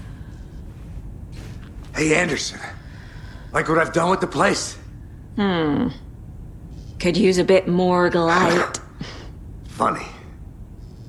Hey, Anderson. Like what I've done with the place? Could use a bit more light. Funny.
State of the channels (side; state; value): both; identical; correlation 1.00